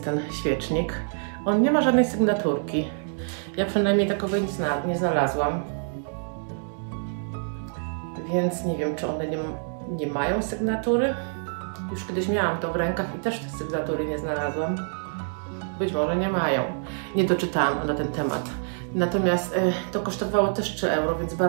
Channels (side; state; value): left; silent; digital silence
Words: ten świecznik. On nie ma żadnej sygnaturki. Ja przynajmniej takowej nie znalazłam. Więc nie wiem, czy one nie mają sygnatury. Już kiedyś miałam to w rękach i też tej sygnatury nie znalazłam. Być może nie mają. Nie doczytałam na ten temat. Natomiast to kosztowało też 3 euro, więc